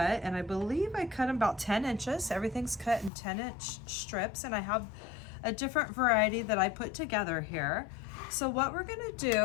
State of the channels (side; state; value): right; drops out; at 3.1 s